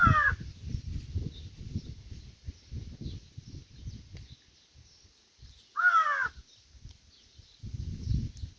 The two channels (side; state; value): both; identical; correlation 1.00